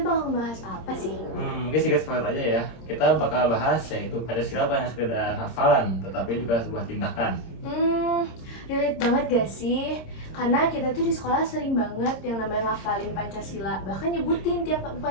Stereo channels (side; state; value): right; late; 26 ms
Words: bakal membahas apa sih? Mungkin sedikit spoiler aja ya. Kita bakal bahas yaitu Pancasila bukan sekedar hafalan, tetapi juga sebuah tindakan. Relate banget gak sih? Karena kita tuh di sekolah sering banget yang namanya ngafalin Pancasila, bahkan nyebutin tiap